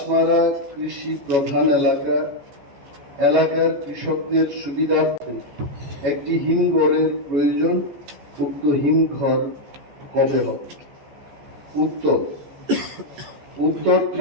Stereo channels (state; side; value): late; left; 14 ms